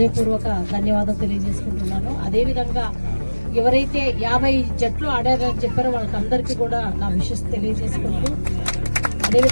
ధన్యవాదాలు తెలియజేసుకుంటున్నాను. అదేవిధంగా ఎవరైతే 50 జట్లు ఆడారని చెప్పారో వాళ్ళకందరికీ కూడా నా విషెస్ తెలియజేసుకుంటూ,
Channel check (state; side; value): inverted; both; correlation -1.00